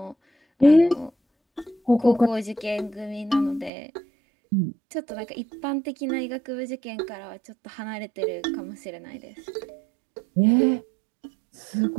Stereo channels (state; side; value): drops out; left; at 3.7 s